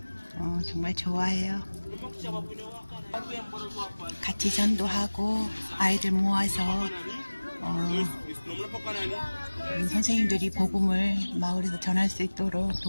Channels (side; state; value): both; inverted; correlation -1.00